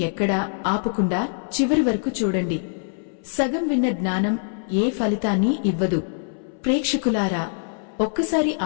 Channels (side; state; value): right; silent; 61 dB below the other